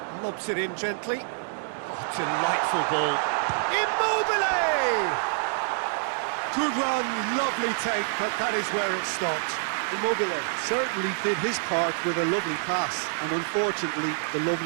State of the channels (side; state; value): left; silent; digital silence